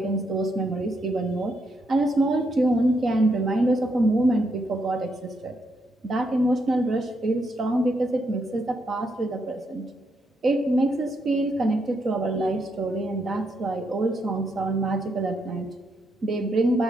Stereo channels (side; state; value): both; normal; correlation 0.78